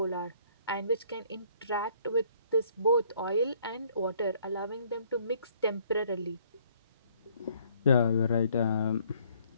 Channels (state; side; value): inverted; both; correlation -0.62